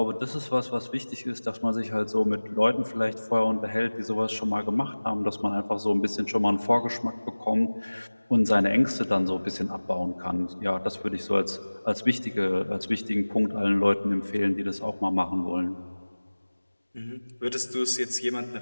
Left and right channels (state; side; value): inverted; both; correlation -1.00